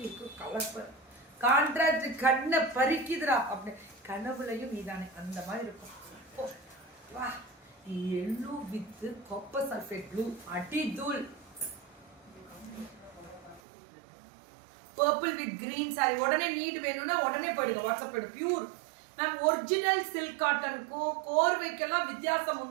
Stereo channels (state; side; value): drops out; left; at 13.6 s